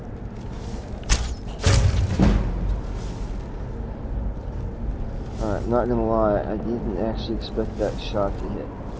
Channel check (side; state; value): both; identical; correlation 1.00